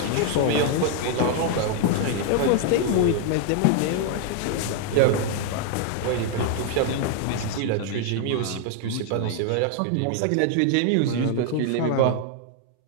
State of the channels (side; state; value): both; different; correlation 0.00